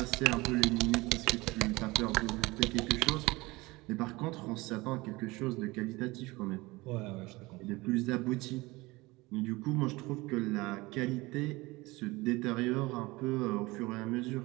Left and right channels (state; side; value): quieter; left; 21.8 dB